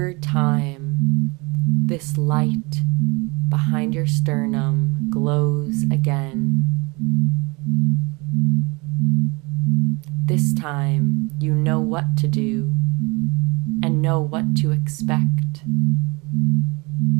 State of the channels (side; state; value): left; quieter; 27.3 dB